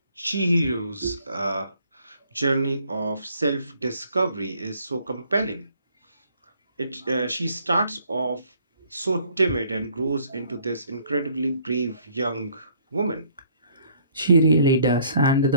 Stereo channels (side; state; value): both; inverted; correlation -0.62